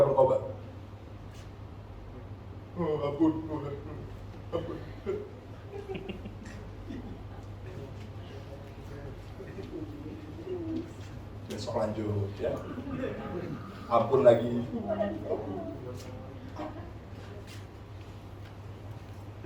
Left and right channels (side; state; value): both; identical; correlation 1.00